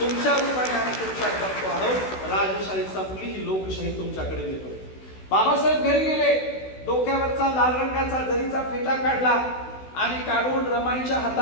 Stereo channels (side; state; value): right; late; 16 ms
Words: रूपाने आम्ही तुमच्यात बघतो आहोत. राजशाही संपली, ही लोकशाही तुमच्याकडे येतोय. बाबासाहेब घरी गेले, डोक्यावरचा लाल रंगाचा जरीचा फेटा काढला आणि काढून रमाईच्या